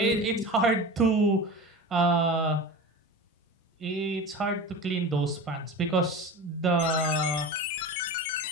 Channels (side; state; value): both; normal; correlation 0.31